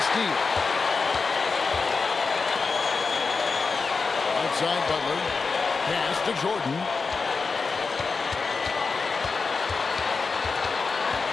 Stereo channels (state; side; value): quieter; right; 4.6 dB